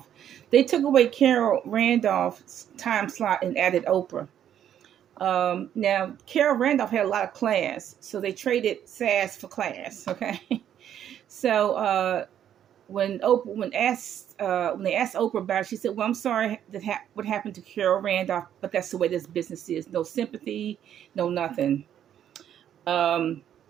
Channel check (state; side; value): quieter; left; 10.1 dB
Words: They took away Carol Randolph's time slot and added Oprah. Now, Carol Randolph had a lot of class, so they traded sass for class. Okay, so when they asked Oprah about it, she said, "Well, I'm sorry that what happened to Carol Randolph, but that's the way this business is. No sympathy, no nothing." Um,